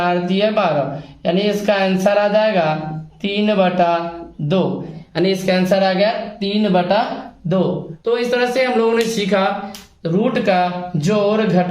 दिए 12, यानी इसका आंसर आ जाएगा 3/2। यानी इसका आंसर आ गया 3/2। तो इस तरह से हम लोगों ने सीखा रूट का जोड़,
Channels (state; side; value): identical; both; correlation 1.00